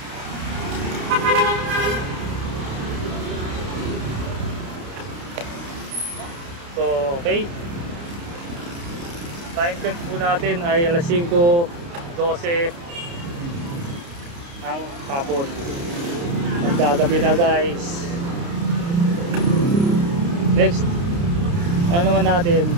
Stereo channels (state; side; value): late; left; 29 ms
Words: So, okay. Time check po natin ay alas 5:12 ang hapon. Magkagabi na guys. Next, ano naman natin?